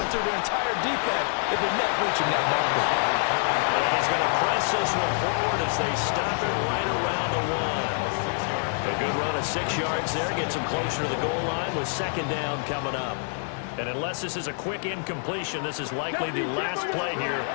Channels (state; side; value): silent; right; 59 dB below the other